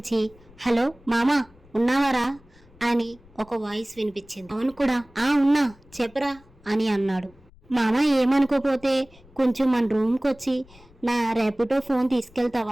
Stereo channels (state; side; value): noise; left; rumble, 26 dB below the sound